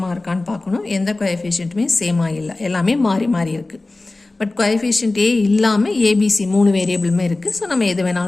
இருக்கான்னு பார்க்கணும். எந்த கோஎஃபிஷியன்ட்டுமே சேமாக இல்லை, எல்லாமே மாறி இருக்குது. பட் கோஎஃபிஷியன்ட் ஏ இல்லாமல் ஏபிசி 3 வேரியபிளுமே இருக்குது. ஸோ நம்ம எது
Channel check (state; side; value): quieter; right; 3.1 dB